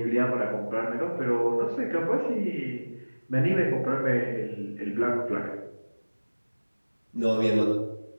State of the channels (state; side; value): inverted; both; correlation -1.00